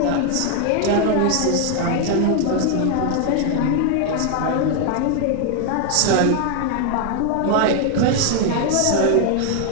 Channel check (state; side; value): different; both; correlation 0.00